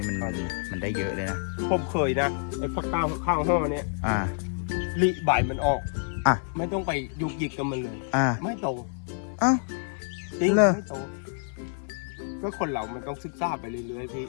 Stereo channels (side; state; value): right; silent; 60 dB below the other